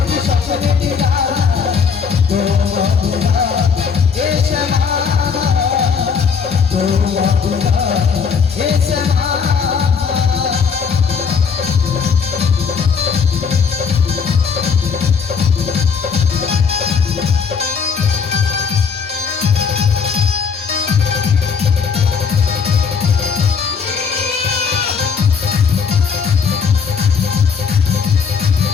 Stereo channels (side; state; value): right; quieter; 6.1 dB